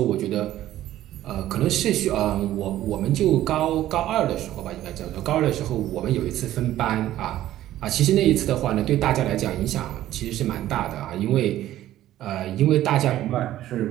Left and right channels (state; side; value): quieter; left; 13.6 dB